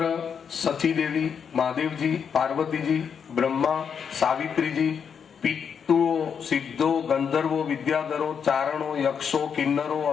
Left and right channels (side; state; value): right; quieter; 7.1 dB